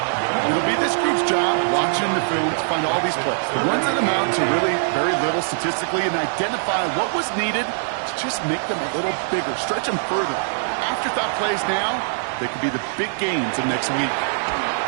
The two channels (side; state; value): left; silent; digital silence